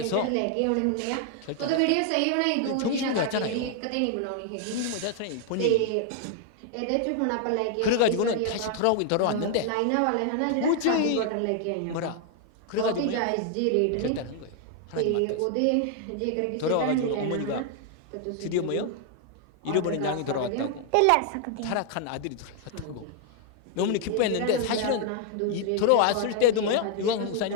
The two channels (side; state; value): both; different; correlation 0.00